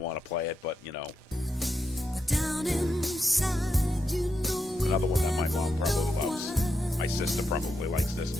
to play it, but, you know. Another one that my mom probably loves. My sister probably likes this,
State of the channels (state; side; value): normal; both; correlation 0.84